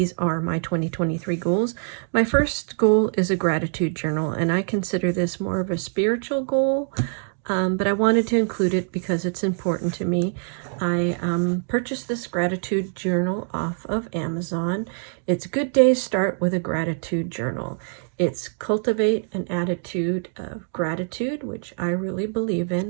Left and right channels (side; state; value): left; silent; 63 dB below the other